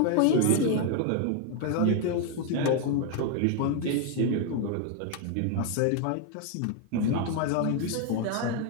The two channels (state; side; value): different; both; correlation 0.01